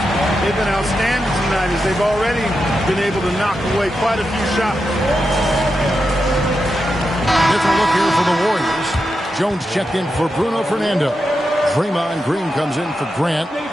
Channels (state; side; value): normal; both; correlation 0.87